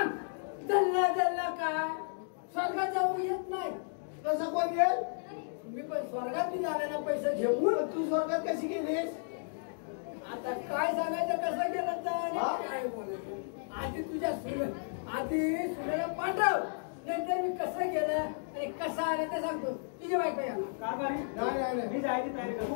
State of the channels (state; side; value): silent; right; digital silence